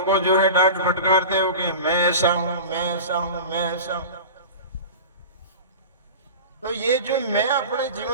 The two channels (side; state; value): both; inverted; correlation -0.32